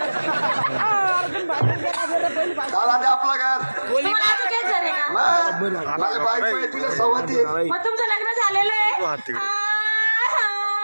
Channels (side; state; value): both; inverted; correlation -1.00